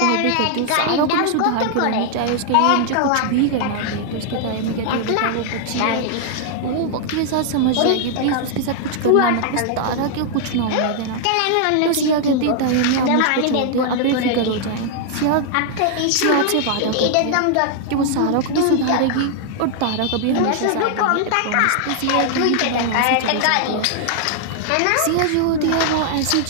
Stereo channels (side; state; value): both; different; correlation -0.01